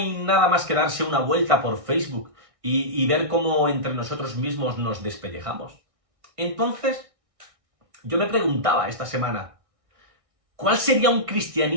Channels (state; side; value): late; left; 1.6 ms